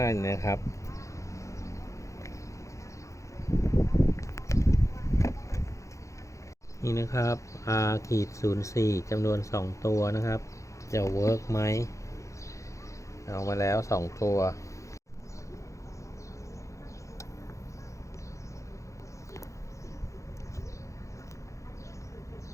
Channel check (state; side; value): late; right; 0.15 ms